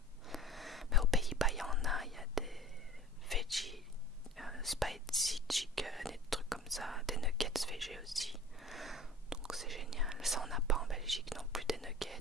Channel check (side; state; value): both; normal; correlation 0.41